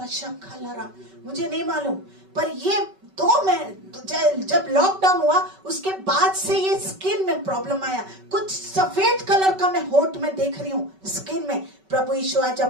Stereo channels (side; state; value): left; late; 5.3 ms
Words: मुझे नहीं मालूम, पर ये जब लॉकडाउन हुआ उसके बाद से ये स्किन में प्रॉब्लम आया। कुछ सफेद कलर का मैं होठ में देख रही हूँ स्किन में। प्रभु यीशु आज